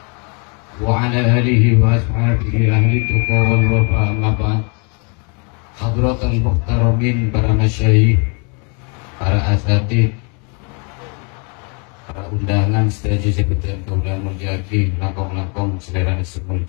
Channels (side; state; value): right; quieter; 35.3 dB